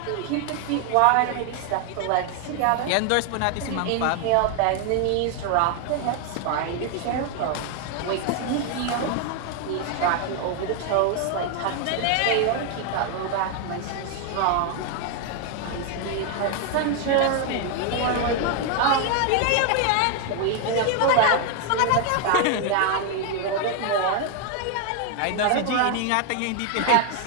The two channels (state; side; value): different; both; correlation 0.01